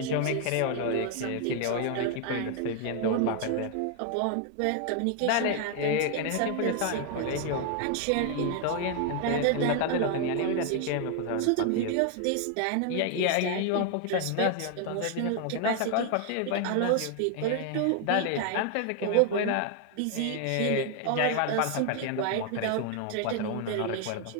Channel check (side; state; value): both; different; correlation 0.00